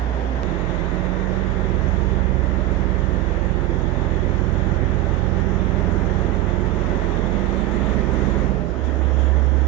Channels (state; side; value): quieter; left; 15.5 dB